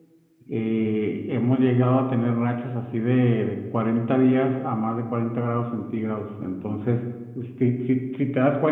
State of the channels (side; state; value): both; identical; correlation 1.00